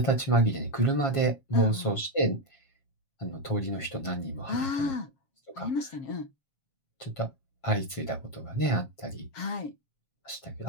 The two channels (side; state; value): right; late; 7.4 ms